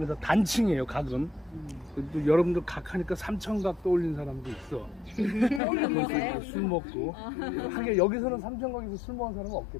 단층이에요. 각은. 또 여러분들 각 하니까 삼천각 떠올린 사람도 있어. 술 먹고. 하긴 여기서는 삼천각에서 술 먹은 사람은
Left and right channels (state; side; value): drops out; right; at 5.6 s